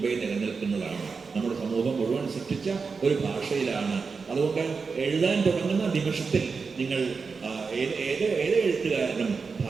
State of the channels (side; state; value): left; quieter; 5.0 dB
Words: നിലനിൽക്കുന്നതാണ്. നമ്മുടെ സമൂഹം മുഴുവൻ സൃഷ്ടിച്ച ഒരു ഭാഷയിലാണ്. അതുകൊണ്ട് എഴുതാൻ തുടങ്ങുന്ന നിമിഷത്തിൽ നിങ്ങൾ ഏത് എഴുത്തുകാരനും